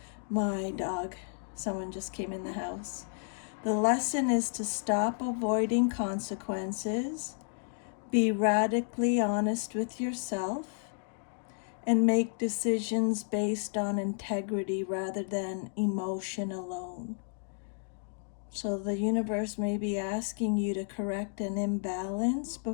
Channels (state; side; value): silent; right; 56 dB below the other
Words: my dog. Someone just came in the house. The lesson is to stop avoiding consequences, be radically honest with yourself, and make decisions based on integrity rather than emotion alone. So the universe may be asking you to correct an imbalance